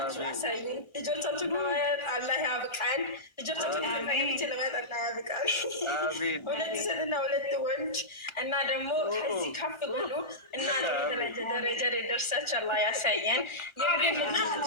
ያሳዩን። ልጆቻችሁን ለማየት አላህ ያብቃን። ልጆቻችሁን ለማየት አላህ ያብቃን። 2 ሴትና 2 ወንድ እና ደግሞ ከዚህ ከፍ ብሎ እና ደረጃ ደርሳችሁ አላህ ያሳየን። የግንና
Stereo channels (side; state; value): right; late; 1.4 ms